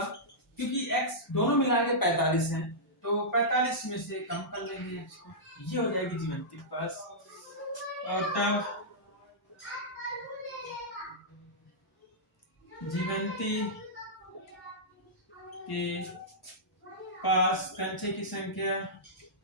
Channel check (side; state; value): both; normal; correlation -0.13